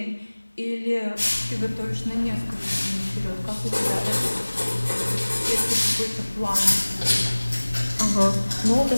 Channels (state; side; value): inverted; both; correlation -1.00